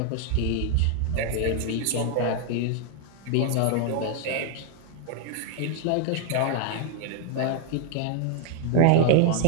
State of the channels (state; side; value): different; both; correlation 0.00